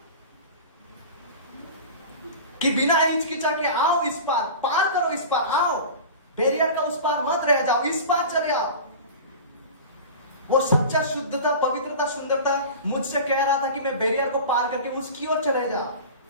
कि बिना हिचकिचा के आओ इस पार करो, इस पार आओ, बैरियर का उस पार मत रह जाओ, इस पार चले आओ। वो सच्चा शुद्धता, पवित्रता, सुंदरता मुझसे कह रहा था कि मैं बैरियर को पार करके उसकी ओर चले जाओ।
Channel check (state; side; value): inverted; both; correlation -0.34